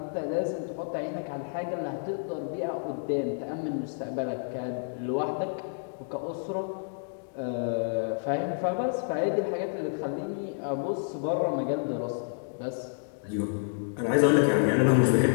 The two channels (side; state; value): right; silent; digital silence